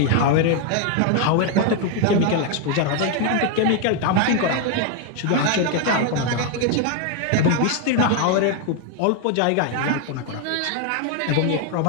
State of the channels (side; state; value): both; different; correlation 0.01